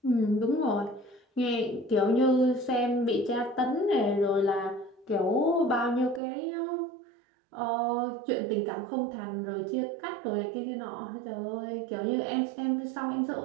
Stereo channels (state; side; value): drops out; left; at 6.2 s